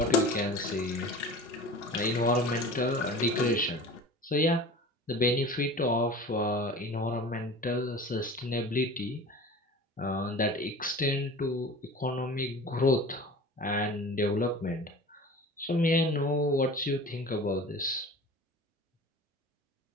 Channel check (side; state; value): both; normal; correlation 0.38